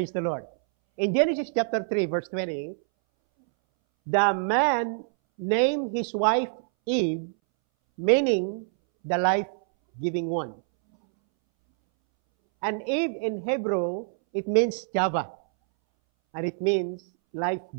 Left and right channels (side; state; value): left; silent; 61 dB below the other